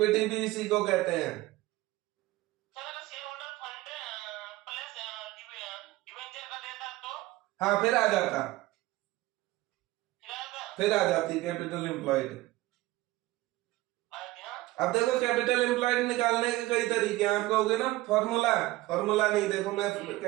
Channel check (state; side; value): quieter; left; 18.5 dB